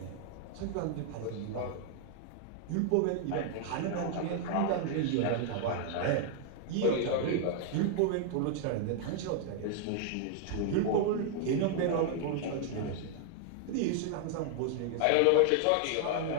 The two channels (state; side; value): different; both; correlation 0.00